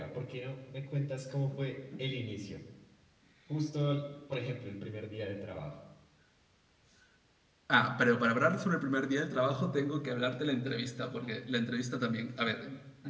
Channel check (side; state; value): both; identical; correlation 1.00